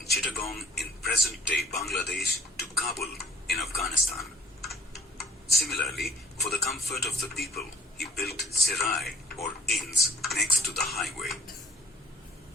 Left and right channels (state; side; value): normal; both; correlation 0.56